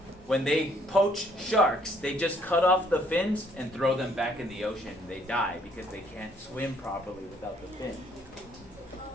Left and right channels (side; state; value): both; normal; correlation 0.65